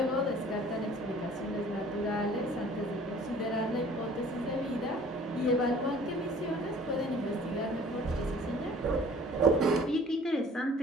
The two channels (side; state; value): both; normal; correlation 0.51